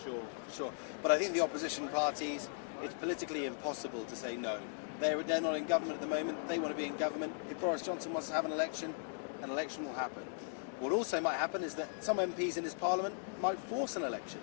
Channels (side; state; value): right; silent; digital silence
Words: Sure. But I think the opposition parties, it's politically impossible to say no. They're not in government at the moment. They want to be in government. If Boris Johnson wants to have an election will happen. What also might happen is that some MPs in his Parliament might force an election.